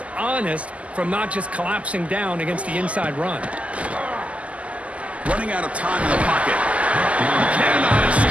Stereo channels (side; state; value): left; late; 0.066 ms